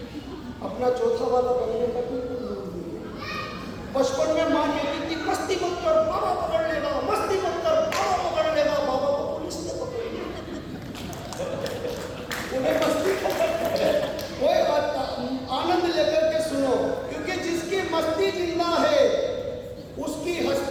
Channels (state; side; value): identical; both; correlation 1.00